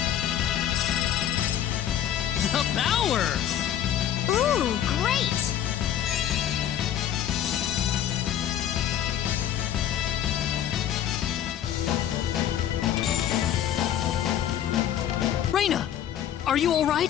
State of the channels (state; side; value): quieter; right; 10.6 dB